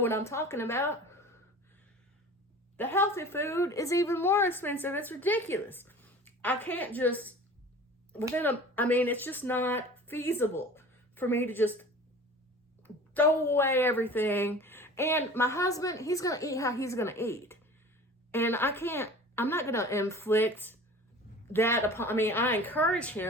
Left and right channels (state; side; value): normal; both; correlation 0.41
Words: I'm talking about. The healthy food is even more expensive. It's ridiculous. I can't just, it's just not feasible for me to just throw away everything. And my husband, he's going to eat how he's going to eat. And I'm not going to inflict that upon, I encourage